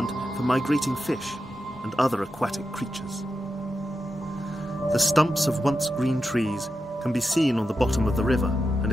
for migrating fish and other aquatic creatures. The stumps of once green trees can be seen on the bottom of the river and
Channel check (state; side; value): normal; both; correlation 0.89